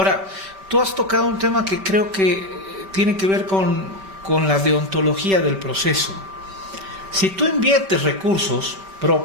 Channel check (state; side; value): late; left; 5.2 ms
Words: tú has tocado un tema que creo que tiene que ver con la deontología del proceso. Si tú inviertes recursos